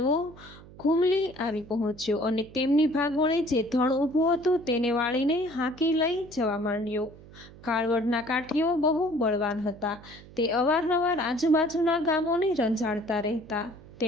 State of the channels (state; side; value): noise; right; hum, 20 dB below the sound